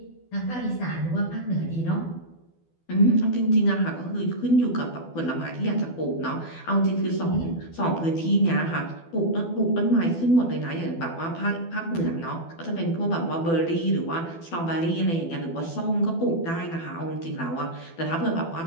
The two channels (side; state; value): right; late; 12 ms